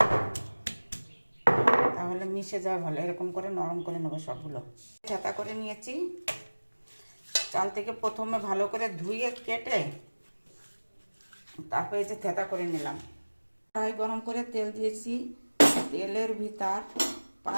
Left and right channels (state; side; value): inverted; both; correlation -1.00